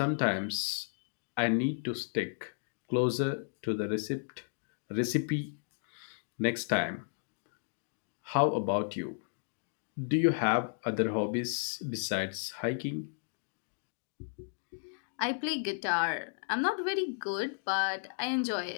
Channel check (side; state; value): right; silent; digital silence